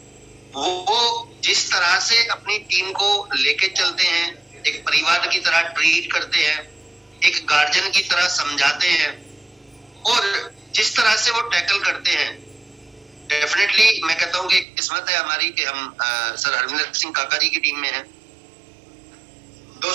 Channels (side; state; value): left; drops out; at 14.7 s